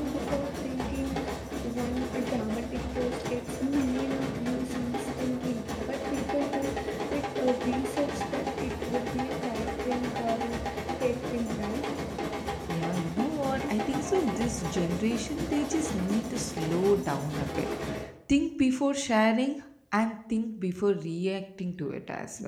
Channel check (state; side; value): identical; both; correlation 1.00